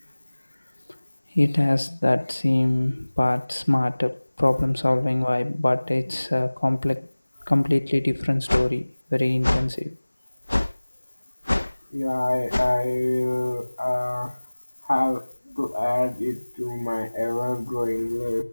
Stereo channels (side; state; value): both; inverted; correlation -1.00